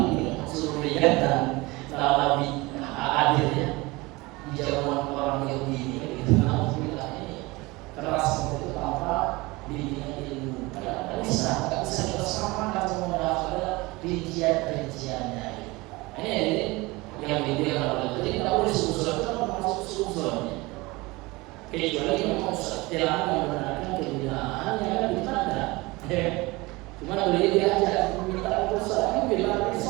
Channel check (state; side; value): quieter; left; 22.7 dB